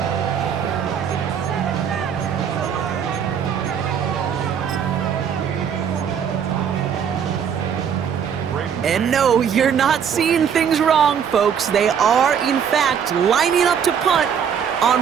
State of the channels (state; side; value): quieter; left; 7.8 dB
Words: And no, you're not seeing things wrong, folks. They are, in fact, lining up to punt